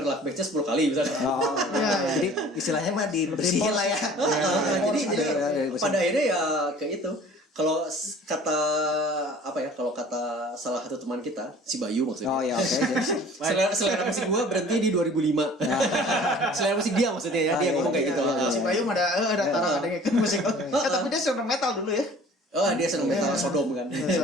lagu backnya 10 kali misalnya. Jadi istilahnya mah dibersihin lah ya. Jadi pada akhirnya ya kayak itu. Kalau kata apa ya? Kalau kata salah satu teman kita, si Bayu maksudnya. Oh ya oke. Selera musik gue berhenti di 2005. Selera musik dia maksudnya ya, dia ngomong kayak gitu. Si Bayu ada taruh ada ngeken musik. Tapi dia seneng metal dulu ya. Oh dia seneng metal Sodom kan.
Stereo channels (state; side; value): normal; both; correlation 0.48